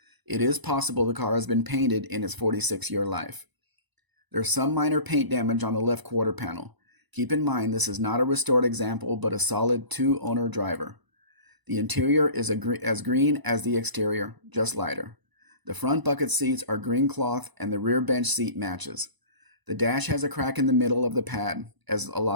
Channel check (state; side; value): late; left; 1.0 ms